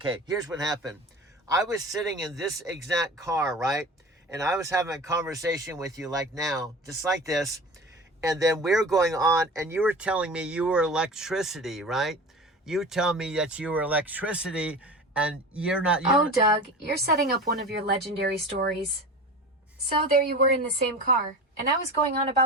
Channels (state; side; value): normal; both; correlation 0.34